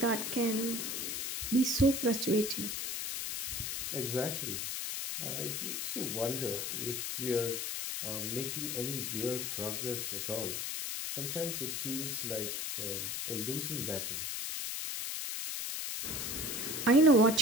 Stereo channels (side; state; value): left; noise; hiss, 2 dB below the sound